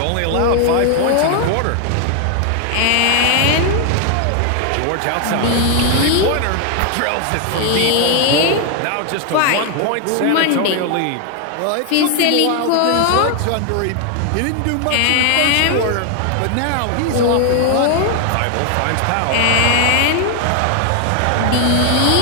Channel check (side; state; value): both; different; correlation 0.00